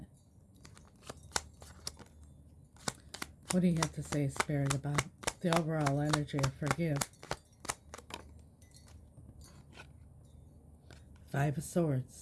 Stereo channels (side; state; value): both; identical; correlation 1.00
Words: What do you have to say, Spirit, about the overall energy of forgive? 5 of